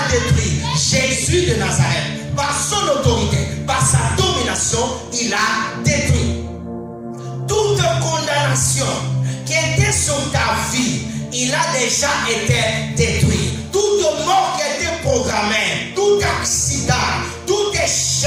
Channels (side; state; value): both; identical; correlation 1.00